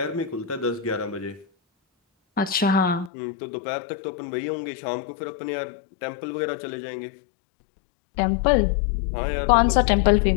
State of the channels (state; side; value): drops out; right; at 3.1 s